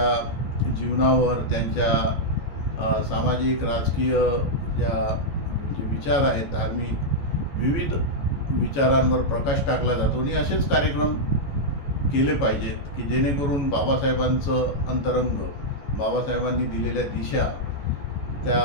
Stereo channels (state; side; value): late; right; 14 ms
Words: जीवनावर, त्यांच्या सामाजिक, राजकीय जे विचार आहेत, धार्मिक विविध विचारांवर प्रकाश टाकला जातो. आणि असेच कार्यक्रम केले पाहिजेत की जेणेकरून बाबासाहेबांचं अंतरंग, बाबासाहेबांनी दिलेल्या दिशा त्या